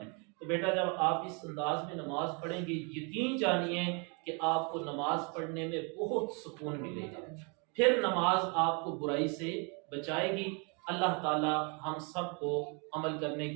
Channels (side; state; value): left; quieter; 34.1 dB